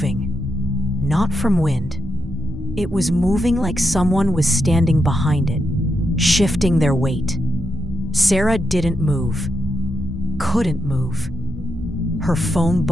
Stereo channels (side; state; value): both; normal; correlation 0.84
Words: Not from wind. It was moving like someone was standing behind it, shifting their weight. Sarah didn't move. Couldn't move. Her phone